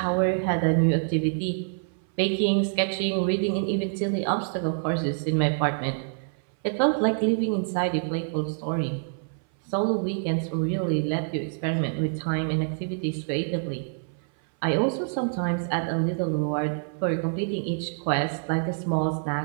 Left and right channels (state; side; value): silent; left; 61 dB below the other